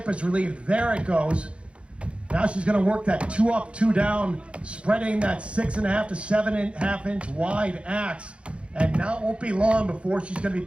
is relieved, there it goes. Now she's going to work that 2 up, 2 down, spreading that 6.5 to 7.5 inch wide axe. And now it won't be long before she's going to be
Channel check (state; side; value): late; left; 0.059 ms